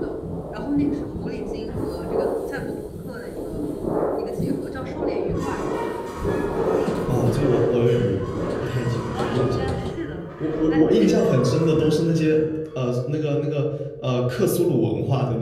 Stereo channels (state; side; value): identical; both; correlation 1.00